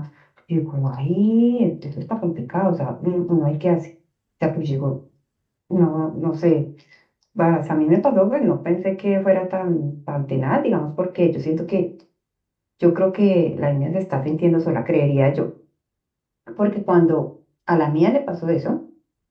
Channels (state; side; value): identical; both; correlation 1.00